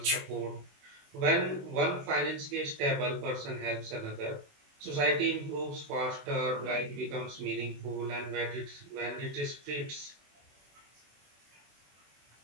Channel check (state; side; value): late; left; 21 ms